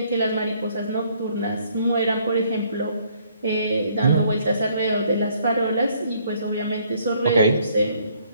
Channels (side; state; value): both; inverted; correlation -0.65